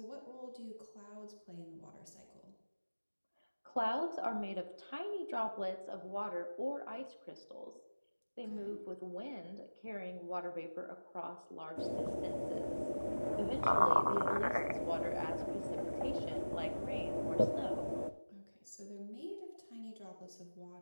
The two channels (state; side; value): inverted; both; correlation -1.00